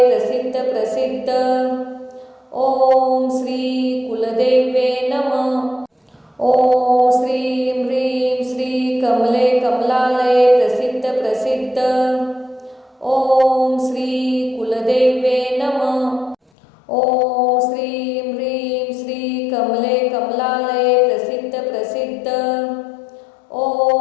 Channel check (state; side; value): drops out; right; at 16.4 s